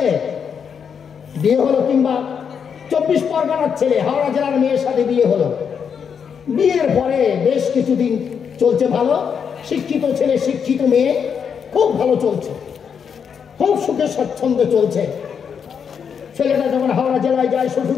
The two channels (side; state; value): right; quieter; 7.0 dB